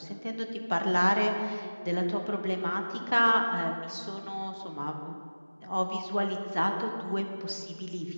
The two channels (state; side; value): inverted; both; correlation -1.00